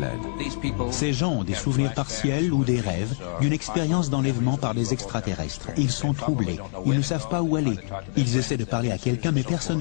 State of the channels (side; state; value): right; silent; digital silence